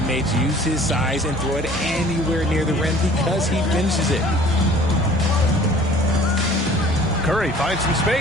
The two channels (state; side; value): normal; both; correlation 0.51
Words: use his size and throw it anywhere near the rim because he finishes it. Curry finds some